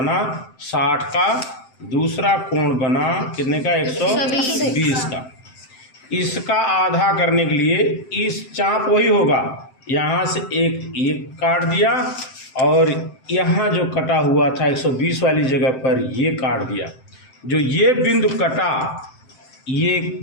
60 का, दूसरा कोण बना कितने का 120 का। इसका आधा करने के लिए इस चाप वही होगा, यहाँ से एक काट दिया और यहाँ जो कटा हुआ था 120 वाली जगह पर ये काट दिया। जो ये बिंदु कटा, ये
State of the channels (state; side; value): late; right; 7.7 ms